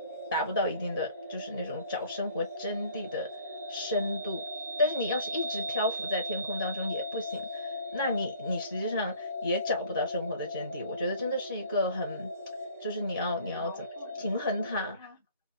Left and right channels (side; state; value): both; inverted; correlation -0.55